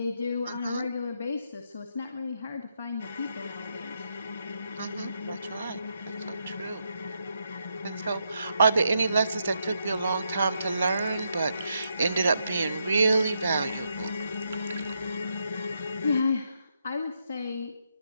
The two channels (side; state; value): both; inverted; correlation -0.81